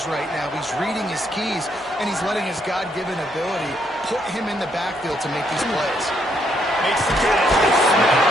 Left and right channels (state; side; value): normal; both; correlation 0.73